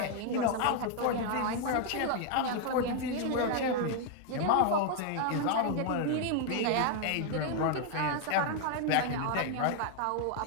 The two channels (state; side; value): different; both; correlation 0.00